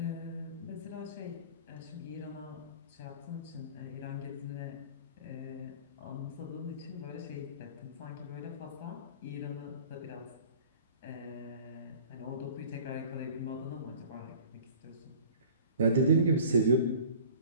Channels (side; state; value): both; inverted; correlation -0.45